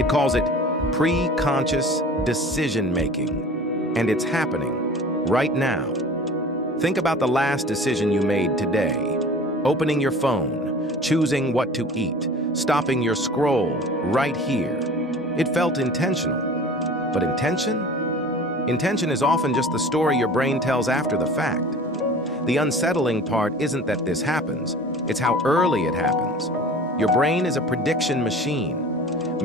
calls it pre-conscious decision-making. And it's happening right now. Think about the last decision you made today. Opening your phone, choosing what to eat, stopping your scroll right here. It felt intentional. But intention? Intention is often just the story your brain tells after the fact. The unsettling part isn't that this happens, it's how early it happens. Your brain is a prediction machine.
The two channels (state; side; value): normal; both; correlation 0.42